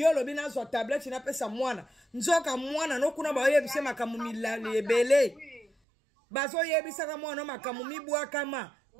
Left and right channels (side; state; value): left; drops out; at 5.7 s